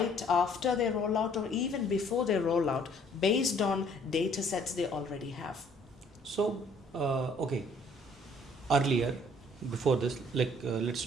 after they roll out, or even before they roll out, based on data sets they already have. So okay, earlier before this, let's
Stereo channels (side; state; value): both; normal; correlation 0.60